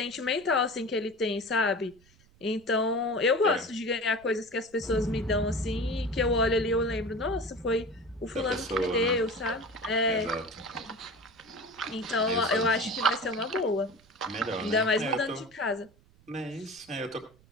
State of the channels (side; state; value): right; noise; rumble, 29 dB below the sound